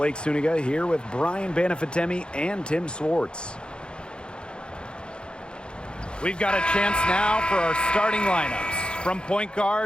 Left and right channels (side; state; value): right; late; 0.052 ms